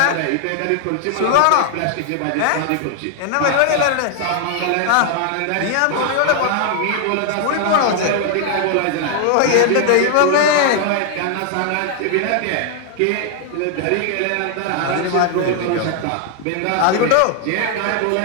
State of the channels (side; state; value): both; different; correlation 0.00